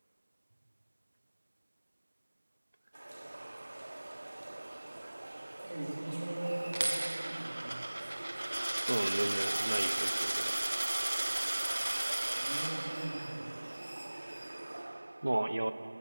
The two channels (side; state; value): both; inverted; correlation -1.00